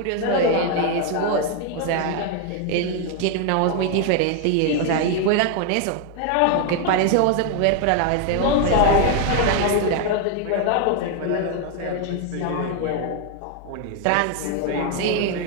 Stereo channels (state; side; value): different; both; correlation 0.00